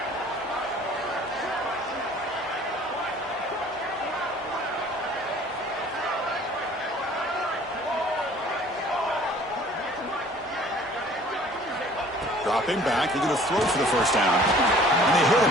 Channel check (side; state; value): both; normal; correlation 0.52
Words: Dropping back, they're going to throw for the first down. And they hit him